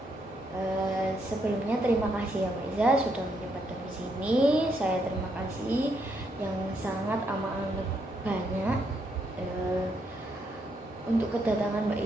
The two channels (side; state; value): both; normal; correlation 0.76